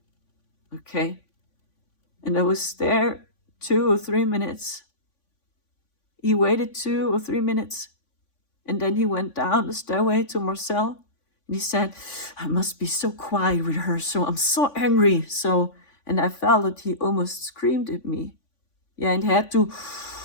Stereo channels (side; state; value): right; late; 3.5 ms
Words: Okay? And I was there 2 or 3 minutes. He waited 2 or 3 minutes, and then he went down the stairway to Marcel, and he said, I must be so quiet with her, so I'm so angry. And I felt that he almost screamed at me. Yeah, and he had to